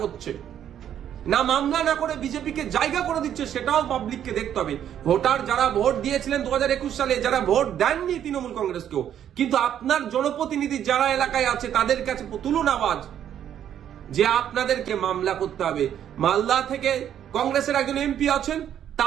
করছে না, মামলা না করে বিজেপিকে জায়গা করে দিচ্ছে, সেটাও পাবলিককে দেখতে হবে। ভোটার যারা ভোট দিয়েছিলেন 2021 সালে, যারা ভোট দেননি তৃণমূল কংগ্রেসকেও, কিন্তু আপনার জনপ্রতিনিধি যারা এলাকায় আছে তাদের কাছে তুলুন আওয়াজ যে আপনাদেরকে মামলা করতে হবে। মালদা থেকে কংগ্রেসের একজন এমপি আছেন,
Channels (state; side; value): quieter; left; 10.0 dB